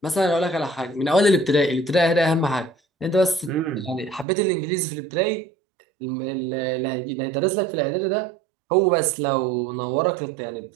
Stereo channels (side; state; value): left; drops out; at 4.2 s